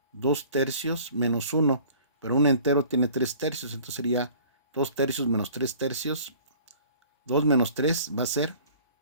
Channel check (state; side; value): inverted; both; correlation -0.50